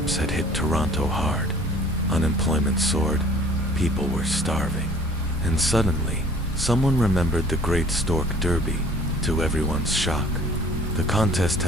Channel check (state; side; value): normal; both; correlation 0.51